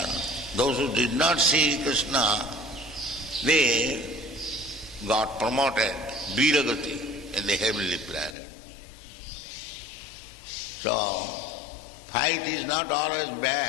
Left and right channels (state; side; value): drops out; right; at 8.3 s